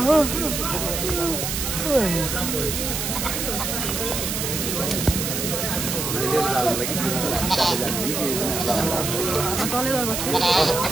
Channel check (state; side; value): noise; right; hiss, 2 dB below the sound